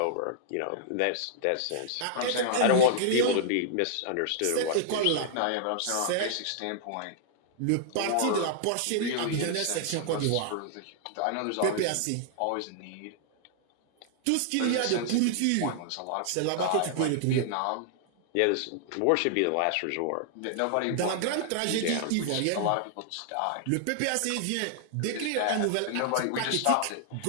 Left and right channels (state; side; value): different; both; correlation -0.01